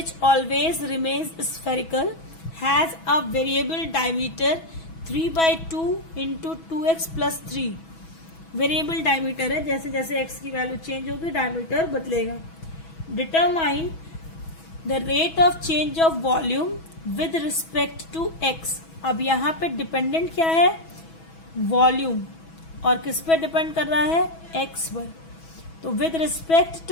always remains spherical has a variable diameter 3/2 × 2x + 3। Variable diameter है, जैसे जैसे x की वैल्यू चेंज होगी डायमीटर बदलेगा। Determine the rate of change of volume with respect to x। अब यहाँ पे dependent क्या है, वॉल्यूम, और किस पे डिपेंड कर रहा है, x पर। तो विद रिस्पेक्ट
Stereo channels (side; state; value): right; late; 6.1 ms